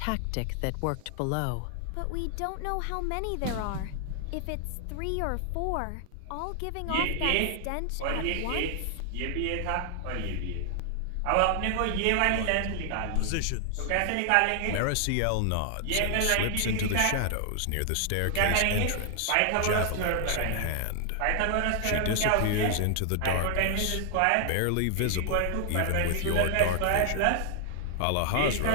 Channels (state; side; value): different; both; correlation 0.00